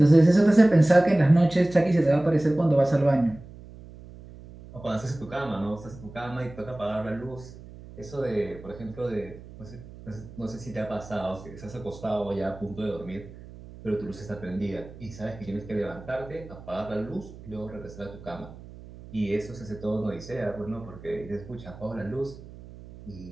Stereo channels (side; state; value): right; noise; hum, 17 dB below the sound